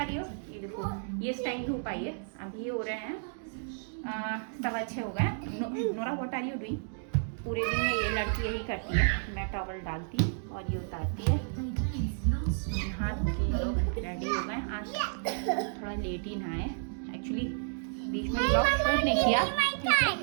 रही हो? ये देखो, ये टाइम धूप आई है, अभी हो रहे हैं 6:15 हो गए। Nora what are you doing? पूरे दिन में ये लड़की यही करती है, मैं टॉवल डालती और ये उतारती है। हाथ के लोग रेडी हो गए। आज थोड़ा लेट ही नहाए, एक्चुअली बीच में ब्लॉग शूट नहीं किया।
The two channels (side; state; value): left; silent; digital silence